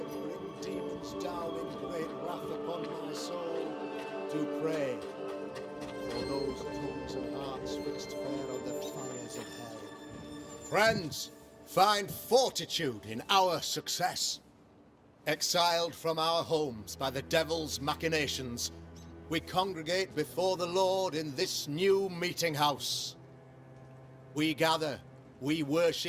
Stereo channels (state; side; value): identical; both; correlation 1.00